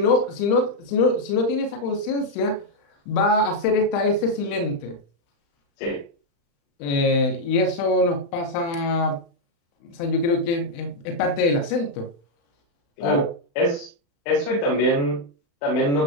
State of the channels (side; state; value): right; late; 35 ms